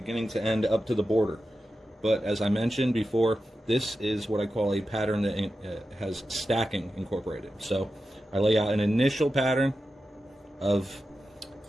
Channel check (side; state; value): both; normal; correlation 0.91